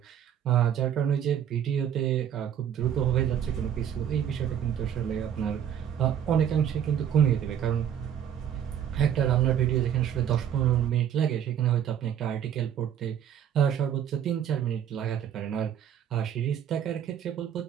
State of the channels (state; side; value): quieter; left; 9.4 dB